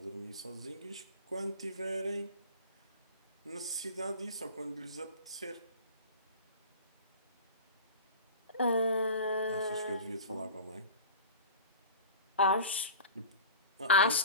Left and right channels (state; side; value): inverted; both; correlation -0.37